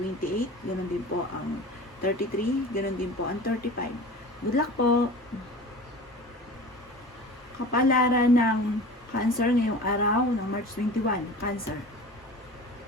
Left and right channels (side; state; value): both; normal; correlation 0.37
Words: ganoon din po ang 33, ganoon din po ang 35. Good luck po! Kapalaran ng Cancer ngayong araw ng March 21, Cancer.